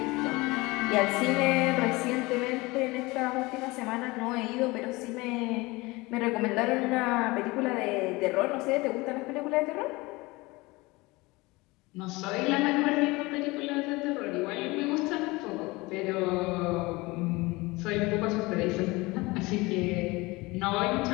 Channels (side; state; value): right; quieter; 22.8 dB